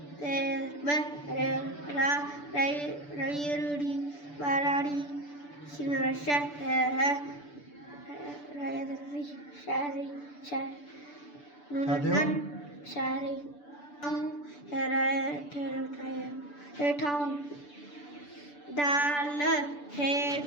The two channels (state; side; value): late; right; 6.9 ms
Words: ते रा रईरुड़ी बाराड़ी शिमरशा है रायदरी शारी शार नूनन शारी हम हेठाऊं दाल